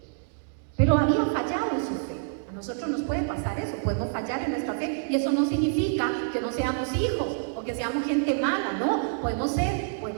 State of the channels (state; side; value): silent; left; digital silence